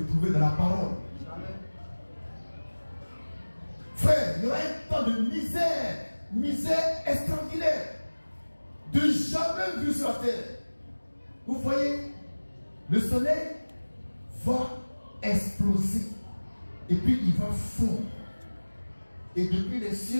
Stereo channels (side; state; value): both; inverted; correlation -1.00